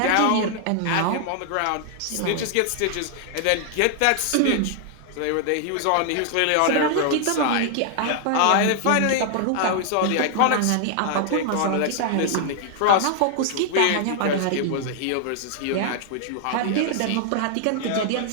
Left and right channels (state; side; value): different; both; correlation 0.00